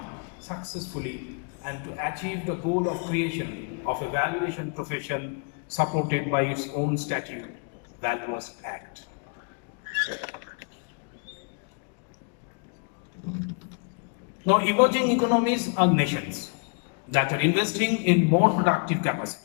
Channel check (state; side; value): quieter; right; 39.4 dB